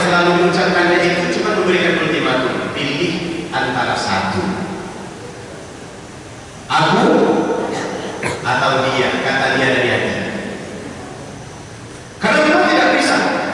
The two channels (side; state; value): both; identical; correlation 1.00